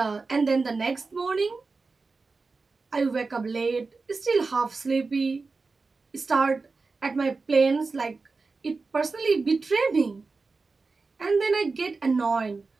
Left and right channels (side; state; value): left; quieter; 4.1 dB